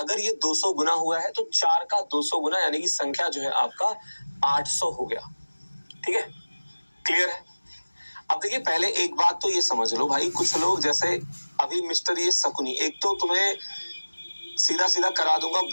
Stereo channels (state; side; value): inverted; both; correlation -1.00